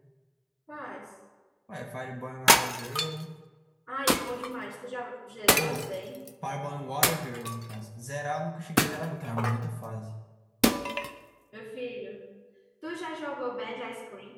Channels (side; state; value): both; identical; correlation 1.00